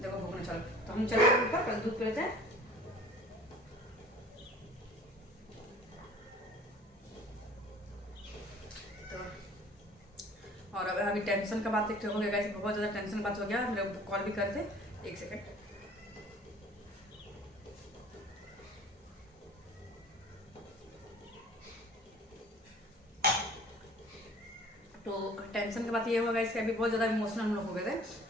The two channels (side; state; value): both; normal; correlation 0.48